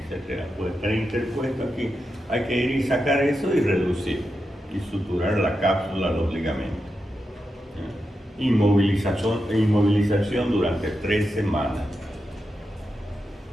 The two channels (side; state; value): both; normal; correlation 0.88